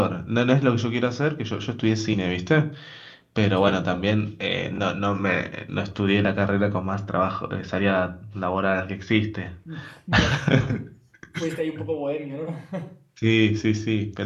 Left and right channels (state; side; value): identical; both; correlation 1.00